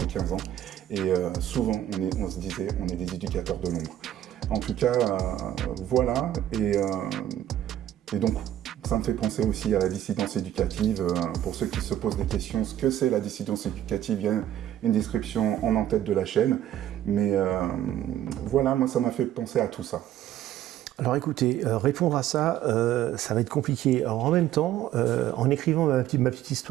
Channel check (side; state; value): left; quieter; 12.0 dB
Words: 15 ans. Et souvent, on se disait on est des éducateurs de l'ombre. En tout cas, voilà, et donc ça me fait penser aussi à la dissidence éducative. Pour ceux qui se posent des questions, ce que c'est la dissidence éducative, il y a une description en tête de la chaîne. Mais voilà, moi ça m'a fait penser à tout ça. Alors écoutez, répondre à ça, ça va être compliqué. Alors en même temps, en écrivant ma petite